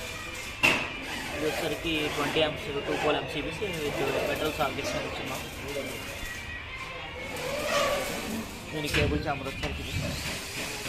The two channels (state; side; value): identical; both; correlation 1.00